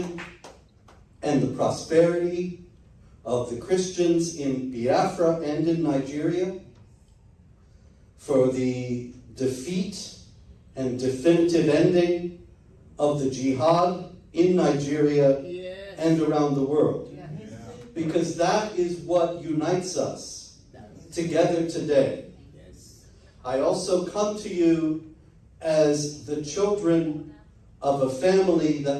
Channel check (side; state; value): both; identical; correlation 1.00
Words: and the prosperity of the Christians in Biafra and in Nigeria, for the defeat and definitive ending of the Jihad in Nigeria and around the world. Because that is what unites us together today. I also come to you as the children of a family